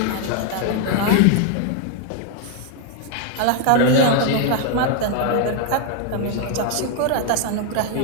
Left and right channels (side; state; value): both; different; correlation 0.00